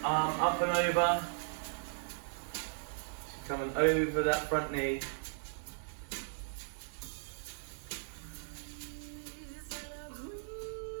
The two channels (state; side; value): silent; left; digital silence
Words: Arm up and over. Coming over that front knee.